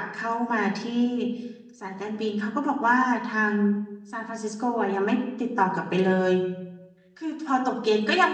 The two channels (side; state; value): both; identical; correlation 1.00